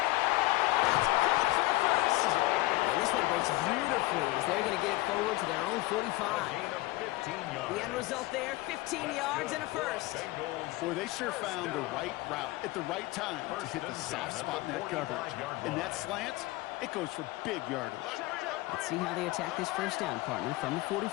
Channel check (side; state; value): right; quieter; 19.8 dB